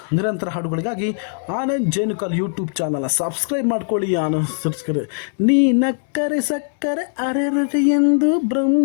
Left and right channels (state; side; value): silent; right; digital silence